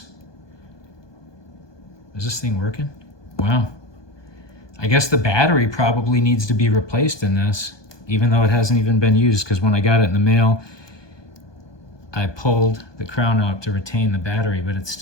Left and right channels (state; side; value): late; right; 1.2 ms